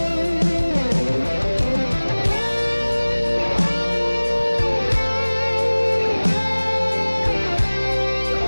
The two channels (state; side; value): inverted; both; correlation -1.00